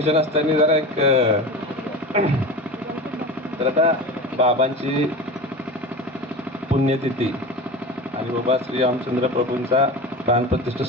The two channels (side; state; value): both; normal; correlation 0.29